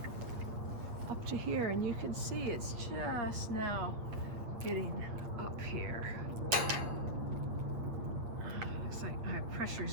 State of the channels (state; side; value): late; left; 8.6 ms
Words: here, and you can see it's just now getting up here. Looks like my